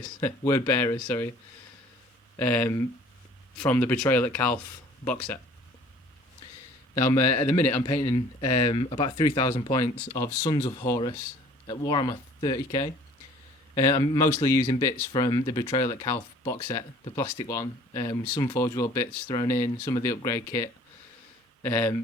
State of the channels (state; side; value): normal; both; correlation 0.52